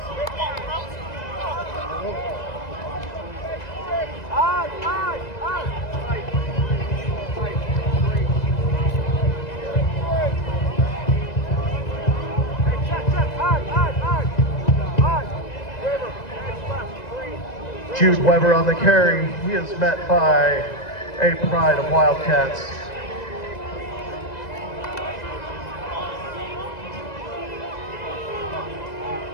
Jude Weber on the carry. He is met by a pride of Wildcats.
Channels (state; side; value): late; right; 2.0 ms